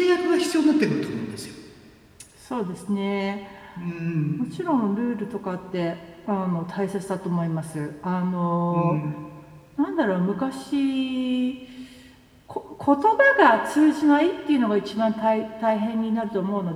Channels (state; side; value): identical; both; correlation 1.00